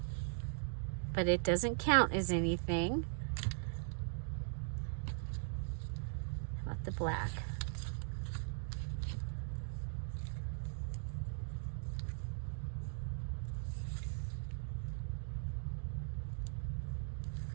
but it doesn't count as anything. How about the black?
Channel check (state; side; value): silent; left; digital silence